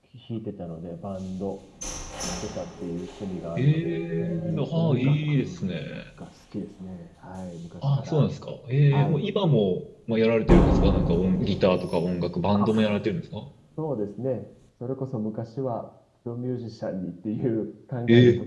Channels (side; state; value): both; identical; correlation 1.00